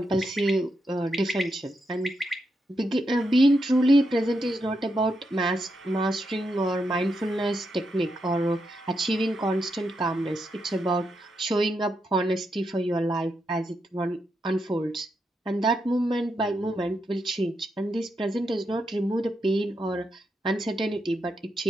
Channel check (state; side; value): normal; both; correlation 0.83